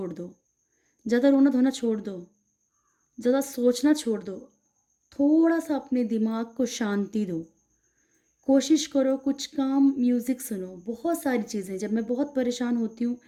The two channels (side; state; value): both; identical; correlation 1.00